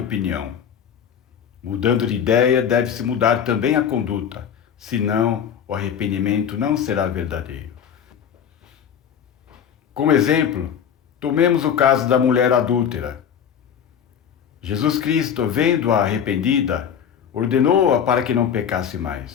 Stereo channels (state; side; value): quieter; right; 8.2 dB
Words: Mudando de ideia, deve-se mudar também a conduta, senão o arrependimento não será verdadeiro. Como exemplo, tomemos o caso da mulher adúltera. Jesus Cristo, vendo-a arrependida, ordenou-a para que não pecasse